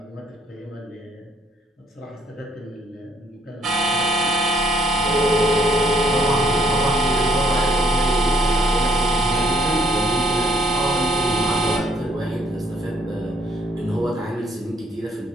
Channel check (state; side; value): normal; both; correlation 0.66